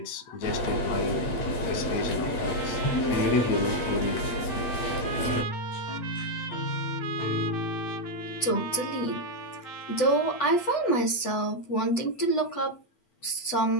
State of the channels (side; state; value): right; late; 8.0 ms